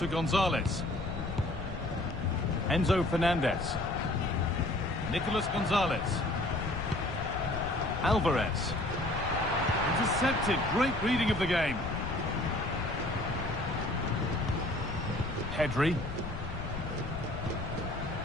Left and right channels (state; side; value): noise; left; rumble, 8 dB below the sound